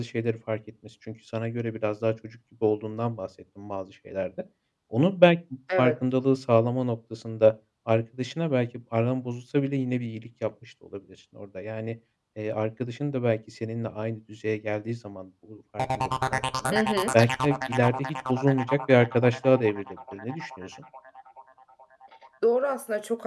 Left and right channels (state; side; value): identical; both; correlation 1.00